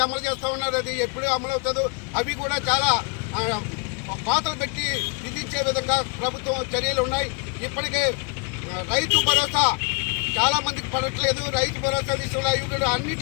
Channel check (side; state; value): right; quieter; 33.7 dB